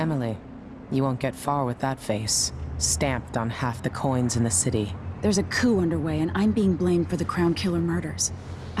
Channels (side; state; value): both; identical; correlation 1.00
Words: you won't get far with that face. Stamped on half the coins in the city. There's a coup underway, and I'm being blamed for the Crown Killer murders.